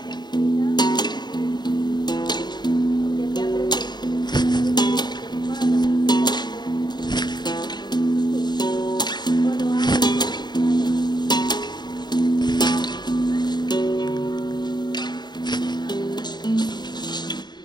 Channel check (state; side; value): late; right; 0.21 ms